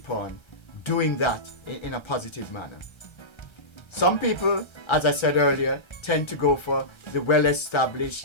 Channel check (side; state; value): right; late; 1.3 ms